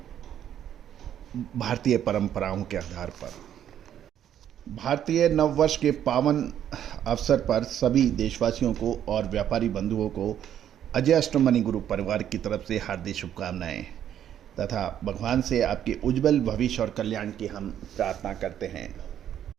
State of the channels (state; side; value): quieter; left; 10.2 dB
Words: भारतीय परंपराओं के आधार पर। भारतीय नववर्ष के पावन अवसर पर सभी देशवासियों को और व्यापारी बंधुओं को अजय एस्ट्रो मनी ग्रुप परिवार की तरफ से हार्दिक शुभकामनाएं तथा भगवान से आपके उज्जवल भविष्य और कल्याण की हम प्रार्थना करते हैं।